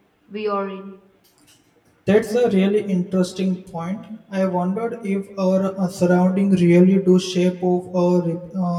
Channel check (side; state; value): both; identical; correlation 1.00